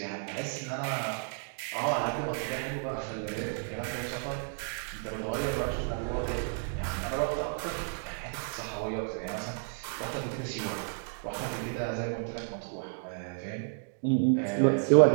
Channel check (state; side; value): silent; left; 57 dB below the other